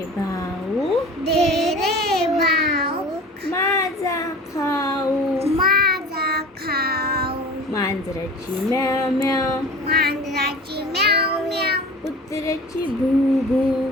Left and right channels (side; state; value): both; normal; correlation 0.39